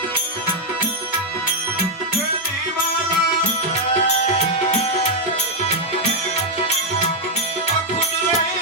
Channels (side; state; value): both; normal; correlation -0.01